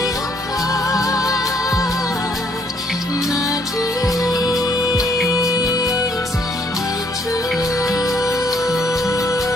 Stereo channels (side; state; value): both; normal; correlation 0.67